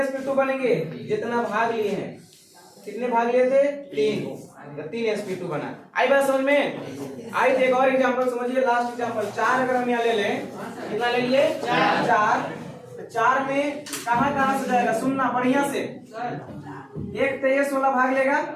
बनेंगे? जितना भाग लिए हैं। कितने भाग लिए थे? 3 sp2 बना। आई बात समझ में? आई एक और एग्जांपल समझिए, लास्ट एग्जांपल। 4 अगर हम यहाँ ले लें, कितना ले लिए? 4। 4 में कहाँ कहाँ से जाएगा? सुनना बढ़िया से। एक तो ये 16 भाग लेगा,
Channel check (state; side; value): identical; both; correlation 1.00